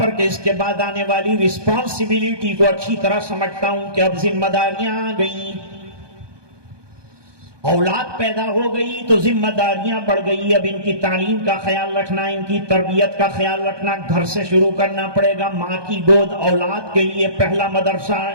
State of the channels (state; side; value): late; left; 1.2 ms